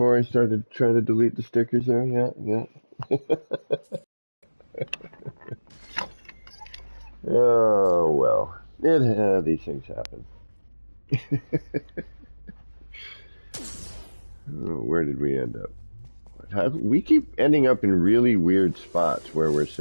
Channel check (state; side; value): inverted; both; correlation -1.00